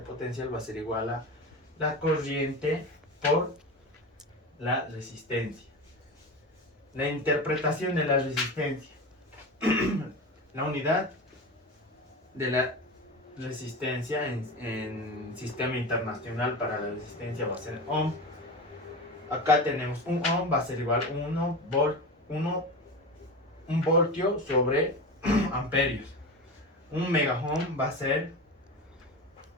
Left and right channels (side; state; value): both; normal; correlation 0.26